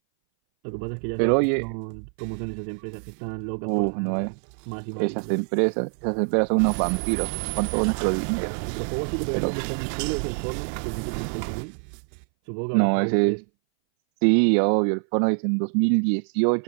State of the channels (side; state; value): left; silent; 60 dB below the other